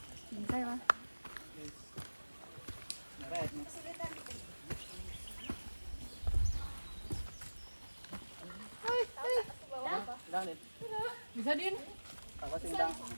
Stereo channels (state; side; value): inverted; both; correlation -1.00